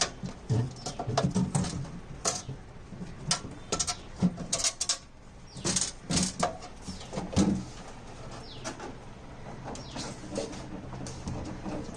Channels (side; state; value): both; identical; correlation 1.00